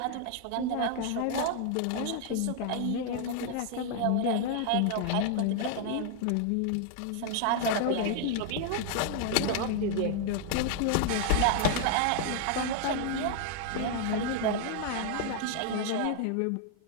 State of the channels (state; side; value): different; both; correlation 0.00